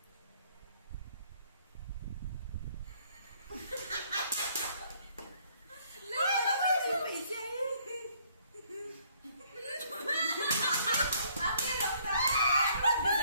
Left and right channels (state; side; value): inverted; both; correlation -0.64